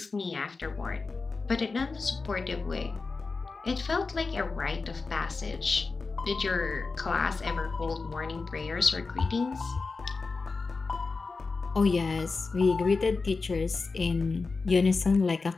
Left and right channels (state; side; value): quieter; right; 4.2 dB